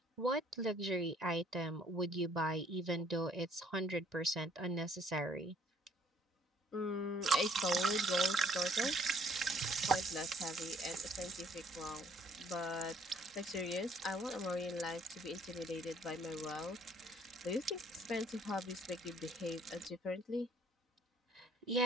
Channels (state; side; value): normal; both; correlation 0.60